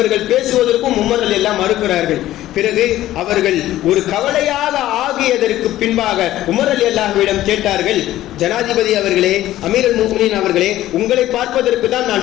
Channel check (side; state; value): right; quieter; 14.3 dB